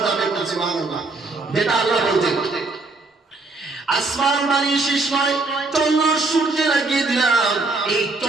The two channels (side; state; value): left; quieter; 3.5 dB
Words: যাবে। সুবহানাল্লাহ। যেটা আল্লাহ বলছেন, আসমান বানিয়ে শেষ নয়, চন্দ্র সূর্য লাগিয়ে দিলাম, এই